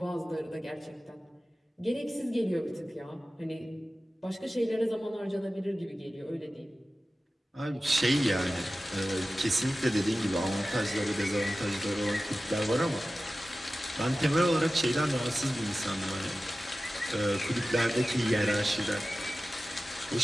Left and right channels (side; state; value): both; normal; correlation 0.95